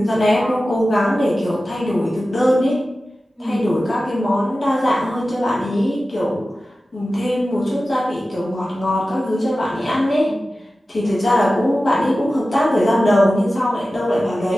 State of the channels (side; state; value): both; normal; correlation 0.95